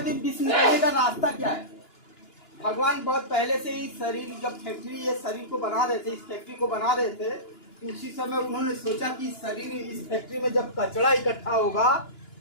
विष निकालने का रास्ता क्या है? भगवान बहुत पहले से ही शरीर, जब फैक्ट्री ये शरीर को बना रहे थे, इस फैक्ट्री को बना रहे थे, तो उसी समय उन्होंने सोचा कि शरीर, इस फैक्ट्री में जब कचरा इकट्ठा होगा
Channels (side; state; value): right; late; 2.9 ms